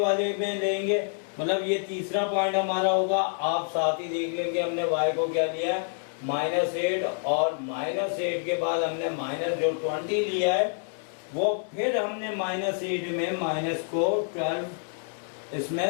में लेंगे, मतलब ये तीसरा पॉइंट हमारा होगा, आप साथ ही लिख लेंगे हमने y को क्या लिया है -8, और -8 के बाद हमने माइनस जो 20 लिया है वो फिर हमने -8 में माइनस को 12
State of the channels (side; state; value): right; silent; digital silence